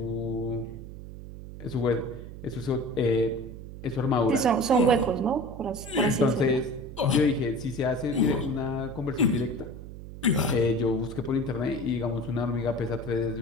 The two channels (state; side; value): noise; right; hum, 12 dB below the sound